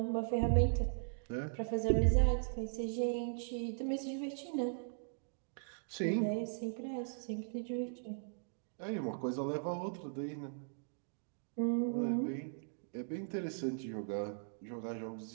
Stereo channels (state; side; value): silent; left; digital silence